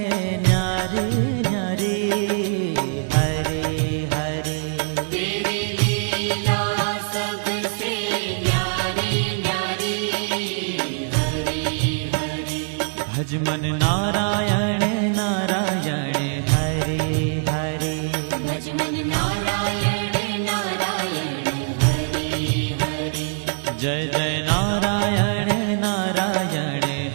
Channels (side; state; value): left; silent; digital silence